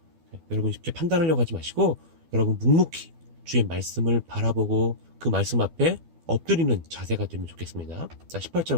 여러분 쉽게 판단하려고 하지 마시고 여러분 묵묵히 주의 말씀을 바라보고 그 말씀 앞에 엎드리는 자세가 되면 좋겠습니다. 자, 18절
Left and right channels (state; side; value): late; left; 12 ms